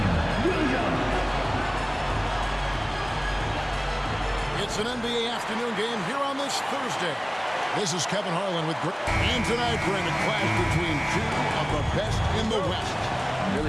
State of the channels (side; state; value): both; identical; correlation 1.00